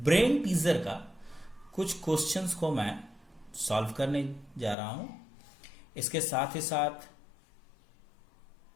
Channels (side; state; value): right; drops out; at 4.8 s